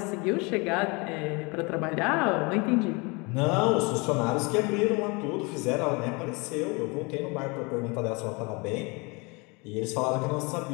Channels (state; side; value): quieter; right; 28.6 dB